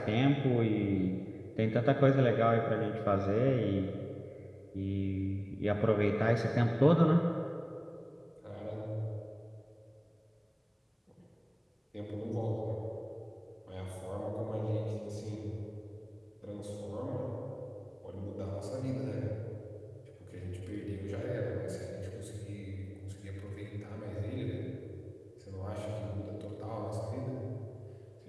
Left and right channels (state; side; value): identical; both; correlation 1.00